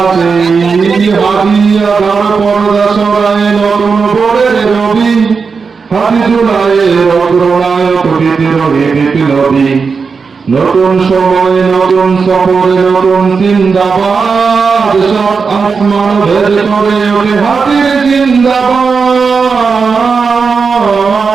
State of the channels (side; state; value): left; quieter; 5.2 dB